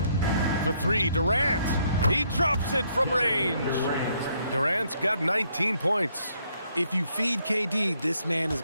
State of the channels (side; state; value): both; inverted; correlation -0.71